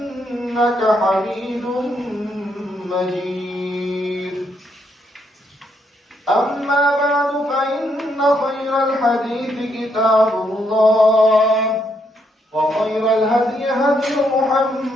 حميد مجيد أما بعد فإن خير الحديث كتاب الله وخير الهدي هدي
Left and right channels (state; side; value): normal; both; correlation 0.75